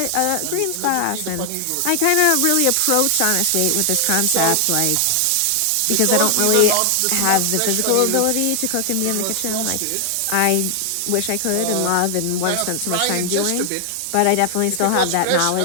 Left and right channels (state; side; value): different; both; correlation 0.00